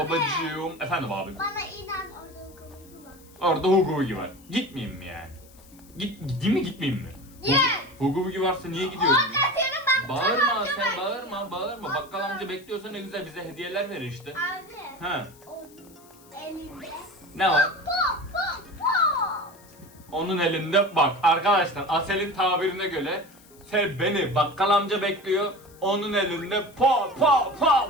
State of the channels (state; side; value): noise; left; hiss, 25 dB below the sound